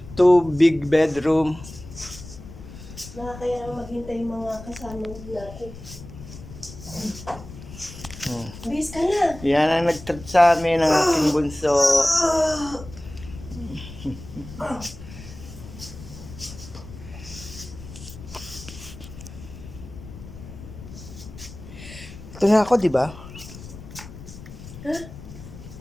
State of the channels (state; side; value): noise; left; rumble, 14 dB below the sound